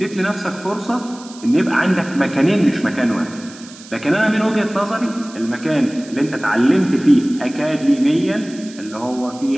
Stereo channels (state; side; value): noise; right; hiss, 19 dB below the sound